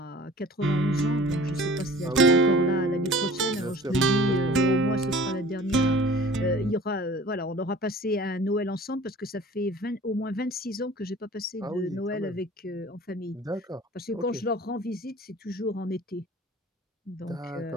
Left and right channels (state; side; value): normal; both; correlation 0.45